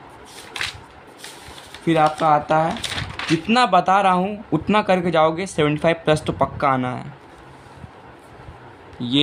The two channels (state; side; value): identical; both; correlation 1.00